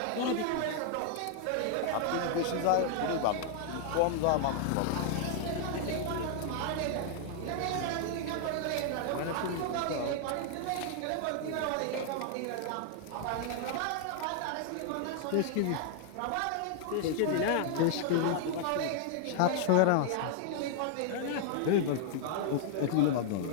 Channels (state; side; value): different; both; correlation 0.00